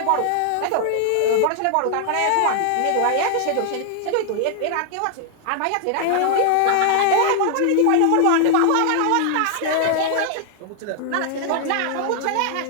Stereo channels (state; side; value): different; both; correlation 0.00